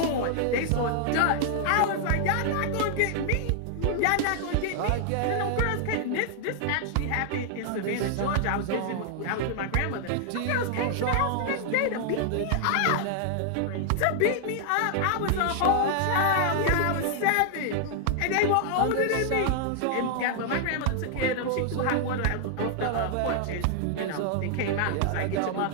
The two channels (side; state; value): both; different; correlation 0.00